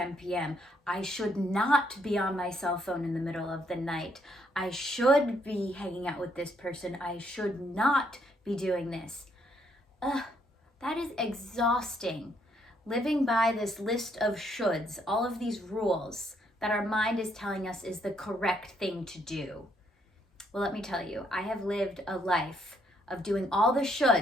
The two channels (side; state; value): both; normal; correlation 0.72